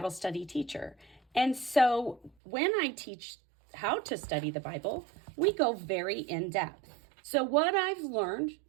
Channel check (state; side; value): drops out; left; at 2.3 s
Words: study teacher. And so when I teach how to study the Bible, we go very in depth. So what I've learned